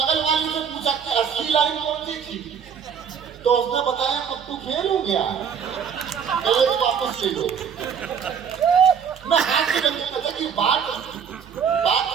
वाली से पूछा कि असली लाइन कौन सी थी, तो उसने बताया पप्पू फेल हो गया, पहले तो वापस ले लो। मैं हाथ से लगे पता कि बात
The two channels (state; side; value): quieter; left; 7.3 dB